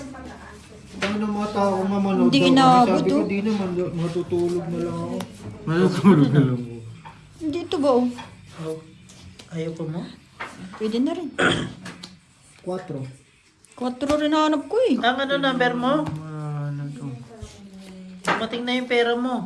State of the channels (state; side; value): identical; both; correlation 1.00